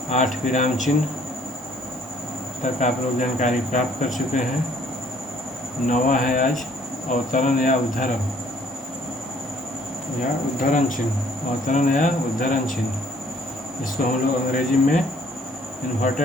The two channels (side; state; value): both; normal; correlation 0.60